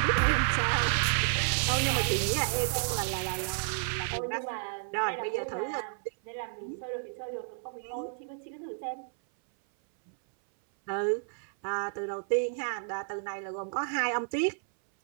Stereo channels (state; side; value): silent; left; 57 dB below the other